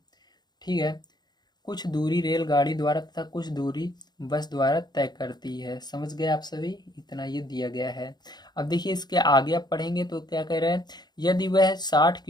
ठीक है, कुछ दूरी रेलगाड़ी द्वारा तथा कुछ दूरी बस द्वारा तय करती है। समझ गए आप सभी, इतना ये दिया गया है। अब देखिए इसके आगे आप पढ़ेंगे तो क्या कह रहे हैं, यदि वह 60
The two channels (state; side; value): late; right; 0.20 ms